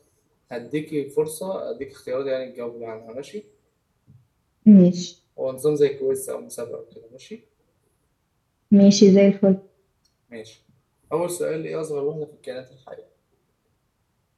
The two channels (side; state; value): both; identical; correlation 1.00